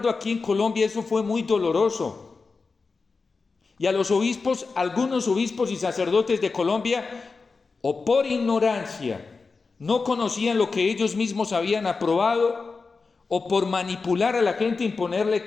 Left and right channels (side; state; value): right; quieter; 4.4 dB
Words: aquí en Colombia, eso fue muy doloroso. Y a los obispos, algunos obispos y sacerdotes de Colombia, o por ignorancia, no conocían lo que ellos mismos habían aprobado, o por manipular a la gente, imponerle